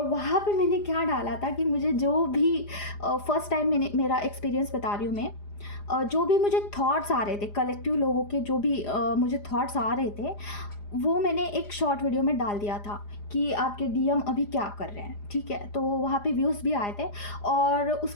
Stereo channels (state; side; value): late; right; 4.9 ms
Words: वहाँ पे मैंने क्या डाला था कि मुझे जो भी फर्स्ट टाइम मेरा एक्सपीरियंस बता रही हूँ मैं, जो भी मुझे थॉट्स आ रहे थे, कलेक्टिव लोगों के जो भी मुझे थॉट्स आ रहे थे, वो मैंने एक शॉर्ट वीडियो में डाल दिया था कि आपके डीएम अभी क्या कर रहे हैं। ठीक है, तो वहाँ पे व्यूज़ भी आए थे। और